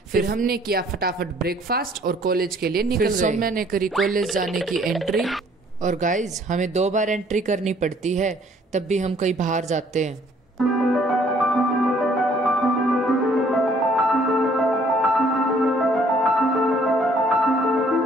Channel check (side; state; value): both; normal; correlation 0.60